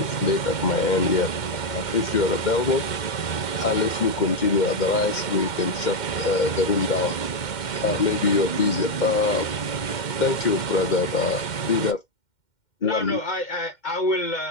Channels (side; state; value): right; late; 2.1 ms